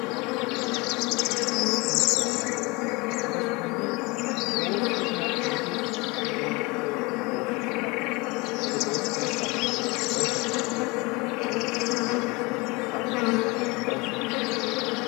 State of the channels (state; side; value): quieter; right; 25.4 dB